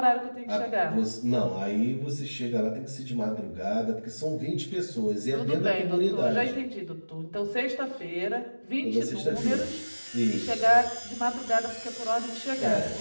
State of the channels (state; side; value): inverted; both; correlation -1.00